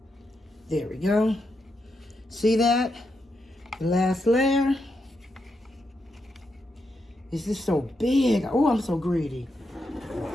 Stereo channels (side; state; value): both; normal; correlation 0.83